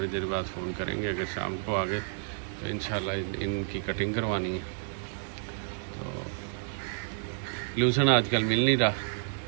देर बाद फ़ोन करेंगे। अगर शाम को आ गए तो इंशाल्लाह इनकी कटिंग करवानी है। तो लूसन आजकल मिल नहीं रहा,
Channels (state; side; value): silent; left; 58 dB below the other